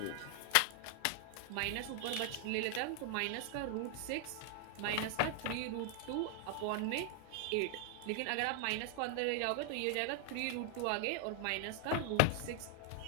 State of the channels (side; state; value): both; different; correlation 0.00